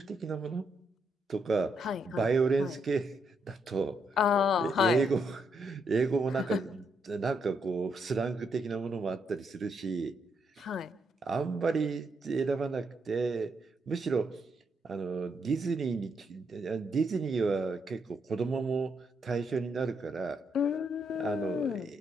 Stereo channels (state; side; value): normal; both; correlation 0.77